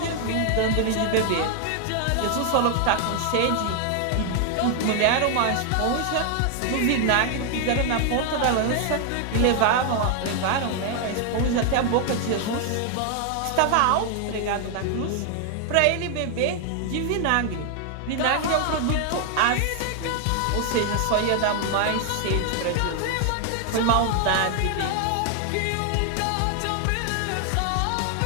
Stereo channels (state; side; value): different; both; correlation 0.00